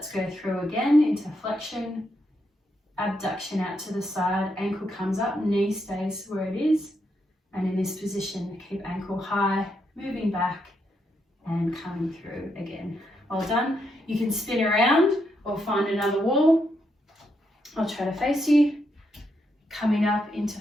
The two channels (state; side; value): normal; both; correlation 0.80